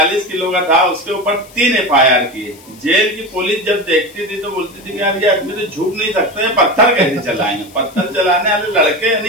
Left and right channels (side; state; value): left; noise; hiss, 23 dB below the sound